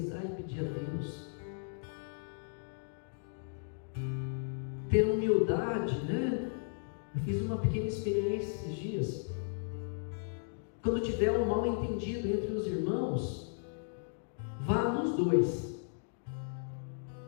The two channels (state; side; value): silent; right; digital silence